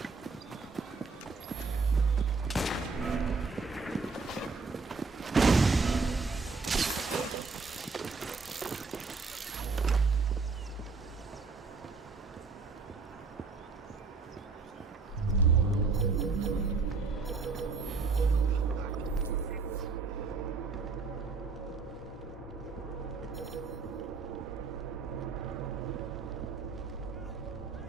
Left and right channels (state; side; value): quieter; left; 4.4 dB